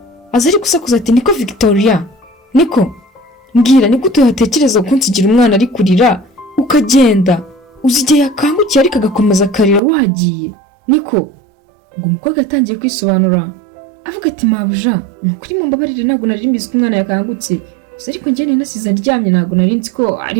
aza ari gusakuza ati niko Victoria, niko mbwira ni gute watekereza kunsigira umwana ari kurira ukagenda, uzi igihe yakangukiye ariko agakomeza akarira wagiye, niko? Ubwo umukobwa yatangiye kwisobanura avuga ati mabuja nukuri mumbabarire ntabwo nari mbizi ko umwana yakangutse, gusa ariko njye nasize aryamye ntabwo nari nzi ko ari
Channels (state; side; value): drops out; left; at 9.8 s